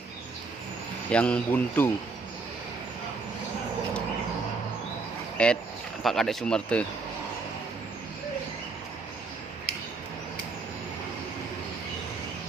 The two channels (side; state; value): left; quieter; 4.1 dB